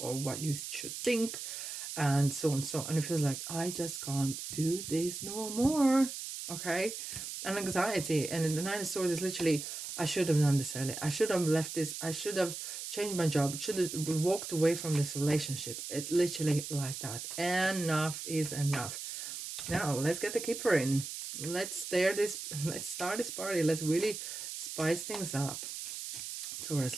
or what you should think, and so on and so on. And it feels like, I just can't do this no more, okay? And anxiety. And in the Nine of Swords is literally, I should have done this earlier. I should have left this. I should have changed my job. Should have walked away from this relationship. It literally like that. Enough is enough. Now, let's get the keeper in. Let's start this party. Let's really spice things up. Taurus,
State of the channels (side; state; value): right; noise; hiss, 7 dB below the sound